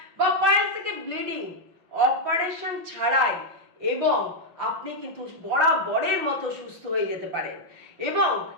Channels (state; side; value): late; left; 5.8 ms